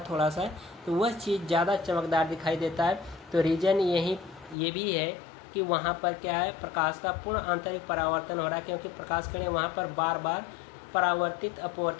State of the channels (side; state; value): right; drops out; at 4.5 s